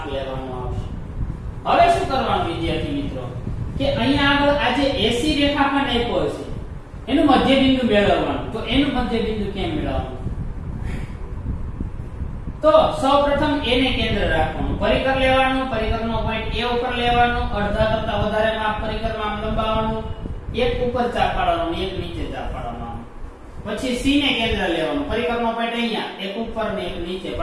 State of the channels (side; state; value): both; identical; correlation 1.00